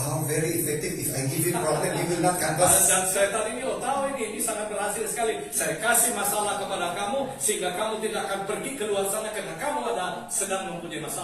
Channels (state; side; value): identical; both; correlation 1.00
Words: very effective. If I give you problem, you will not canvass. Dan setan ini, tahu ini sangat berhasil sekali. Saya kasih masalah kepada kamu, sehingga kamu tidak akan pergi keluar sana karena kamu sedang mempunyai